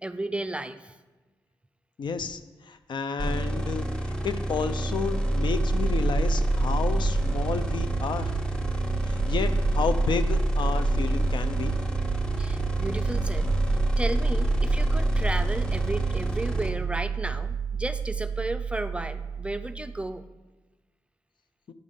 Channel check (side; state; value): both; normal; correlation 0.86